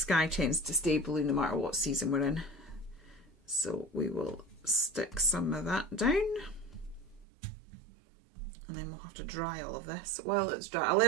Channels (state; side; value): drops out; left; at 7.2 s